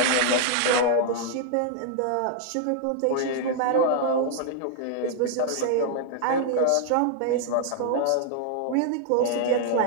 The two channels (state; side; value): different; both; correlation 0.00